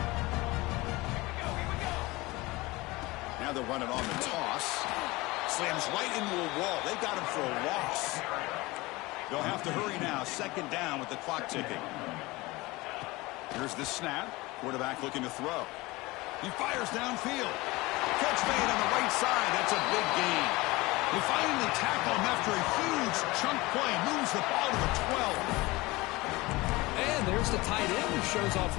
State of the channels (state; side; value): quieter; right; 21.7 dB